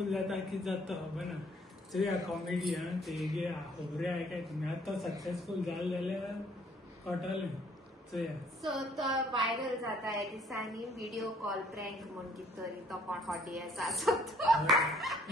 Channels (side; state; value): both; normal; correlation 0.61